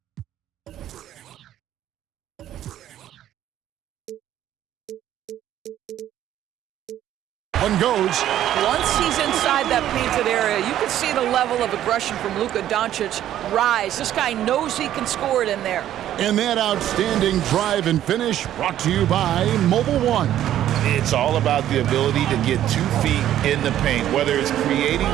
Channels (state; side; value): quieter; left; 11.9 dB